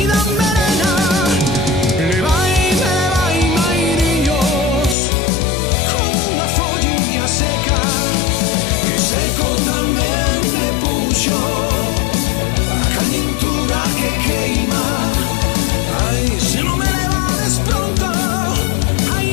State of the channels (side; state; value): right; drops out; at 5.0 s